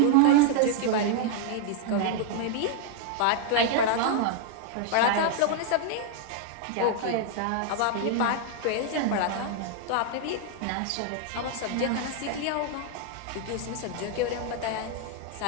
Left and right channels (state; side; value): different; both; correlation 0.00